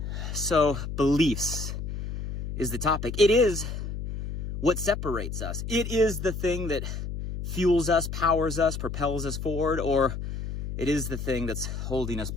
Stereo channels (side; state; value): left; noise; hum, 5 dB below the sound